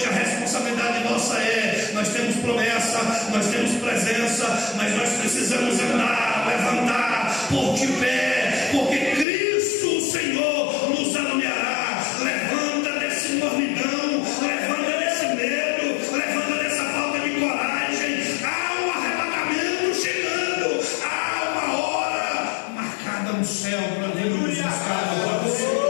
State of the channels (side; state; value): right; drops out; at 9.2 s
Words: a responsabilidade nossa é: nós temos promessa, nós temos presença, mas nós precisamos andar, levantar, pôr de pé, porque Cristo, o Senhor, nos alumiará. Levanta desse mornidão, levanta desse medo, levanta dessa falta de coragem. Há um arrebatamento chegando, há uma hora marcada no céu para Deus nos buscar.